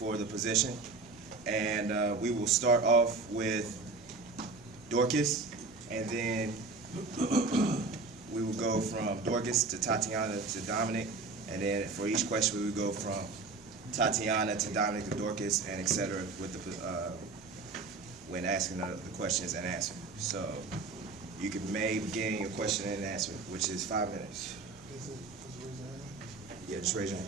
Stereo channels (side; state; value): left; quieter; 3.9 dB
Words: the position. And we will start off with Dorcas, and then we will go from Dorcas to Tatiana to Dominic, and then for each question we will go from Tatiana to Dominic to Dorcas, and etc. with the when asking the questions and answer. So you can begin your question and answer, which is 5 minutes. Yeah, just raise your